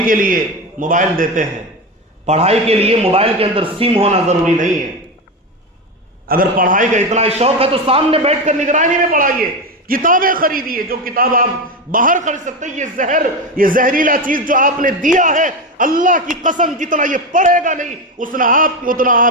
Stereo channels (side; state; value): both; normal; correlation 0.17